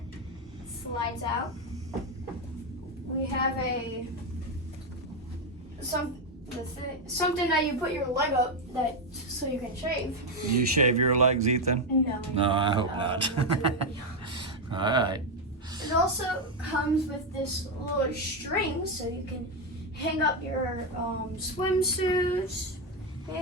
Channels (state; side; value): normal; both; correlation 0.06